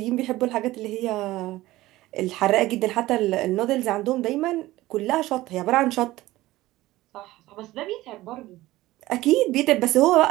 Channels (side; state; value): left; quieter; 17.3 dB